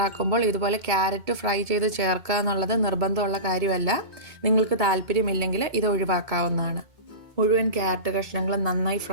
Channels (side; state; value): left; late; 2.1 ms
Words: ഇതുപോലെ ക്യാരറ്റ് ഫ്രൈ ചെയ്ത് ചേർക്കുക എന്നുള്ളത് നിർബന്ധമുള്ള കാര്യമല്ല. നിങ്ങൾക്ക് താല്പര്യമില്ലെങ്കിൽ ഇത് ഒഴിവാക്കാവുന്നതാണ്. മുഴുവൻ ക്യാരറ്റ് കഷ്ണങ്ങളും നന്നായി